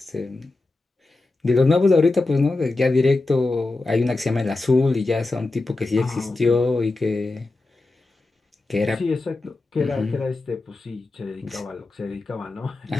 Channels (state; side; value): quieter; right; 3.2 dB